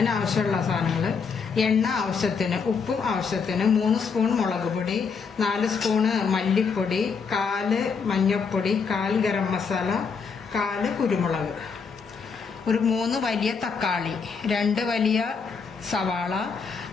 സാധനങ്ങൾ: എണ്ണ ആവശ്യത്തിന്, ഉപ്പും ആവശ്യത്തിന്, 3 സ്പൂൺ മുളക് പൊടി, 4 സ്പൂണ് മല്ലിപ്പൊടി, 1/4 മഞ്ഞൾപ്പൊടി, 1/4 ഗരം മസാല, 1/4 കുരുമുളക്, ഒരു 3 വലിയ തക്കാളി, 2 വലിയ സവാള,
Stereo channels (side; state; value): right; quieter; 5.5 dB